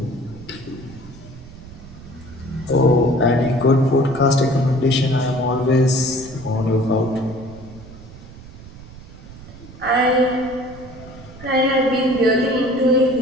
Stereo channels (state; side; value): noise; right; rumble, 17 dB below the sound